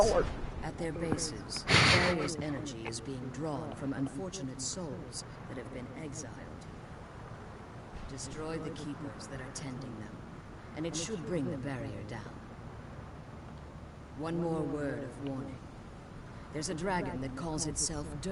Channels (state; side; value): identical; both; correlation 1.00